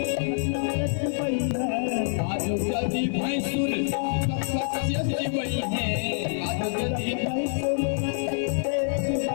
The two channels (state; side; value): silent; right; 61 dB below the other